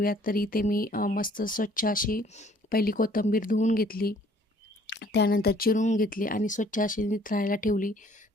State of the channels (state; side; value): normal; both; correlation 0.58